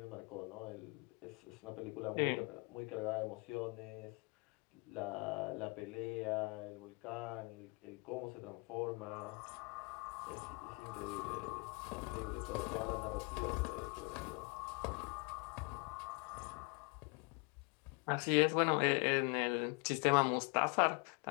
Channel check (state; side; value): quieter; right; 30.5 dB